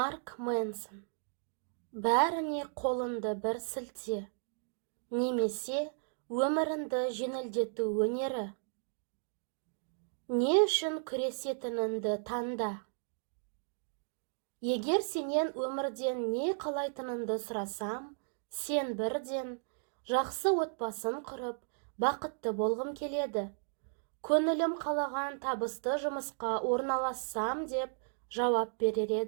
Мэнсон. Бәріне қолынды бір сілте, немесе өмірінді жеңілдету өнері. Не үшін күресетініңді таңда. Егер сенен өмірден не қалайтыныңды сұрасам, сен бірден жақсы отбасын құрып, бақытты болғым келеді. Көңілім қалаған табысты жұмысқа орналассам деп жауап берер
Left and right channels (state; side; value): silent; left; digital silence